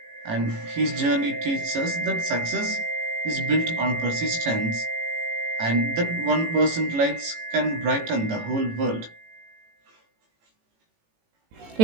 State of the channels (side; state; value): left; late; 18 ms